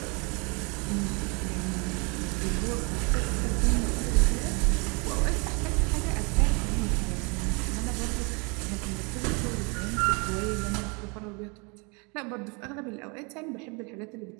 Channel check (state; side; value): quieter; left; 31.3 dB